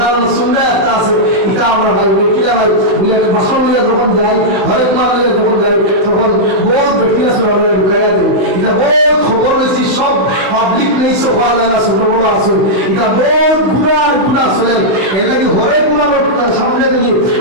সুন্দর একটা আছে এটা আমরা ভাই কিনা ভাই বলে বাসন নিয়ে যখন যাই হরেক মাল নিয়ে যখন যাই তখন বহুত ব্যক্তি আছে আমরা ঢুকাই দিই এটা বহুত খবর হয়েছি সব পাবলিক নেই সব পাওয়া যায় না ছোট বড় আছে এটা বহুত গুণা আছে এর লাগে হরেক গুণার সামনে দিকে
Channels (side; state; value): left; late; 16 ms